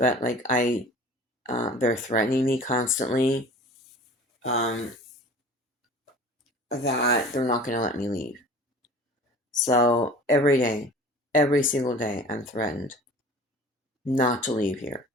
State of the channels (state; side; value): normal; both; correlation 0.43